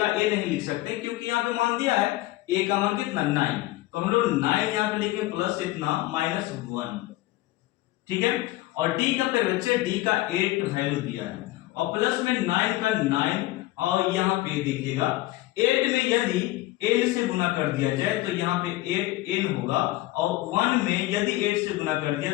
ए नहीं लिख सकते क्योंकि यहाँ पे मान दिया है ए का मान कितना 9, तो हम लोग 9 यहाँ पे लिखेंगे प्लस इतना माइनस 1, ठीक है। और डी का पे बच्चे डी का 8 वैल्यू दिया है और प्लस में 9 का 9, और यहाँ पे देखिएगा 8 में यदि n से गुना कर दिया जाए तो यहाँ पे 8n होगा, और 1 में यदि 8 से गुना कर दिया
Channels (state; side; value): quieter; right; 17.7 dB